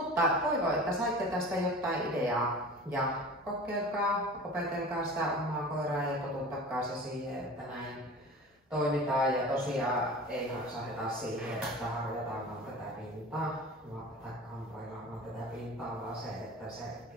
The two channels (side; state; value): both; normal; correlation 0.38